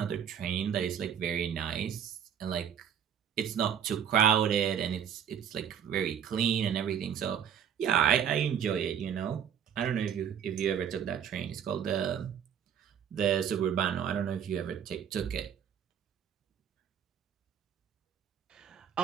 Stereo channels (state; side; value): quieter; left; 8.6 dB